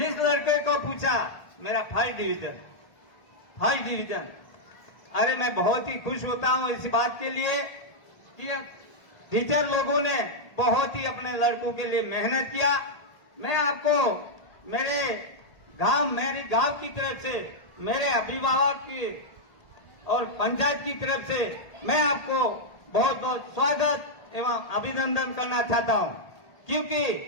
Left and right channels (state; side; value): late; right; 1.8 ms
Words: लड़के को पूछा मेरा फर्स्ट डिवीजन, अरे मैं बहुत ही खुश होता हूं इस बात के लिए कि टीचर लोगों ने बहुत ही अपने लड़कों के लिए मेहनत किया। मैं आपको मेरे गांव की तरफ से, मेरे अभिभावक की और पंचायत की तरफ से मैं आपको बहुत बहुत स्वागत एवं अभिनंदन करना चाहता हूं, क्योंकि